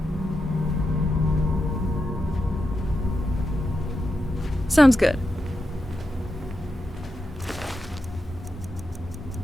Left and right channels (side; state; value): both; normal; correlation 0.87